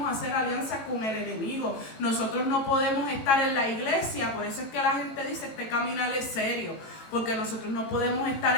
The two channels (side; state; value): right; late; 18 ms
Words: hacer alianza con el enemigo, nosotros no podemos estar en la iglesia. Por eso es que la gente dice: este caminar es serio, porque nosotros no podemos estar